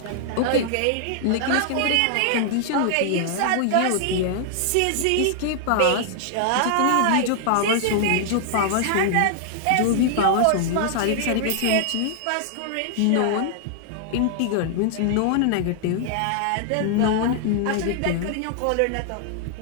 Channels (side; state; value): both; different; correlation -0.01